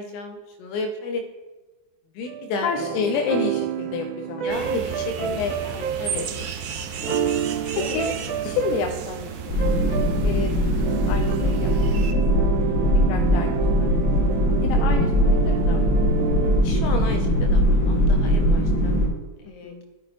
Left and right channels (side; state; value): right; late; 24 ms